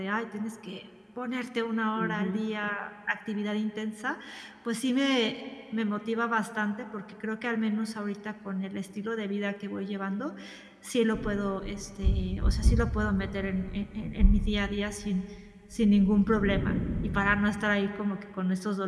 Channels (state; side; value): identical; both; correlation 1.00